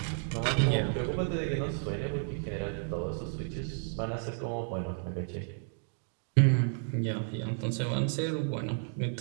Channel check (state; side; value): silent; left; 56 dB below the other